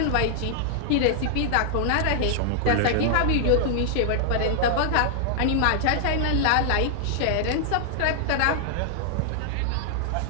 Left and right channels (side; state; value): both; different; correlation -0.01